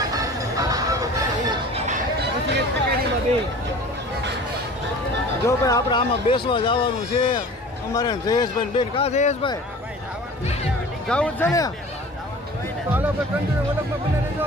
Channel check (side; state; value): both; normal; correlation 0.42